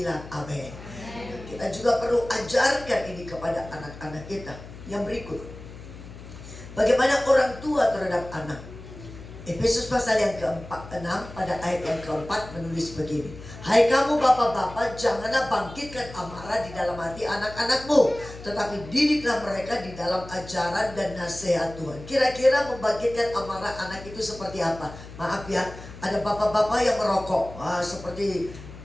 amin. kita juga perlu ajarkan ini kepada anak-anak kita. Yang berikut, bagaimana orang tua terhadap anak. Efesus pasal yang ke-6 pada ayat yang keempat menulis begini. Hai kamu bapak-bapak, janganlah bangkitkan amarah di dalam hati anak-anakmu, tetapi didiklah mereka di dalam ajaran dan nasihat Tuhan. Kira-kira membangkitkan amarah anak itu seperti apa? Maaf ya, ada bapak-bapak yang merokok. Seperti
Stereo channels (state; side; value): noise; left; hum, 15 dB below the sound